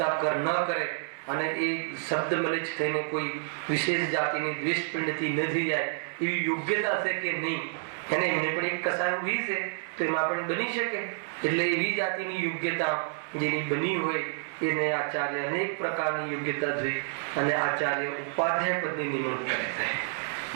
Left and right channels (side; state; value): left; silent; 59 dB below the other